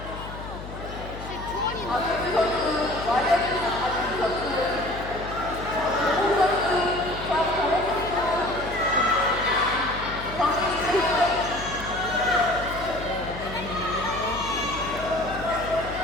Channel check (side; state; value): left; noise; hum, 11 dB below the sound